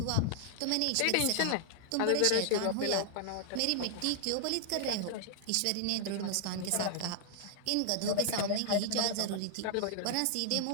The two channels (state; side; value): different; both; correlation 0.00